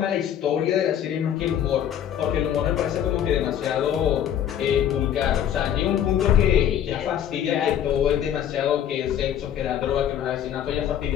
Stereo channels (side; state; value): right; quieter; 10.0 dB